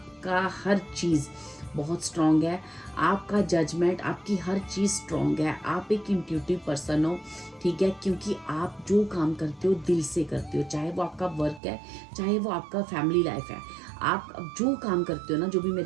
हर चीज़ बहुत स्ट्रॉन्ग है, आपका जजमेंट, आपकी हर चीज़ स्ट्रॉन्ग है। आप एक इंट्यूटिव पर्सन हो, ठीक है, क्योंकि आप जो काम करते हो दिल से करते हो, चाहे वो आपका वर्क है, चाहे वो आपका फैमिली लाइफ है। आप जो काम करते हो ना, जो भी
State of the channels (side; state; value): left; drops out; at 11.6 s